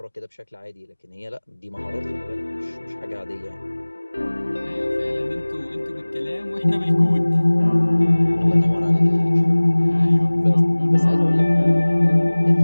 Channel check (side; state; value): both; inverted; correlation -1.00